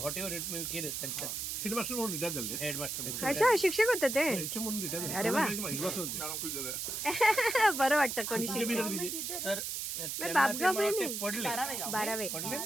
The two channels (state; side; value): noise; right; hiss, 3 dB below the sound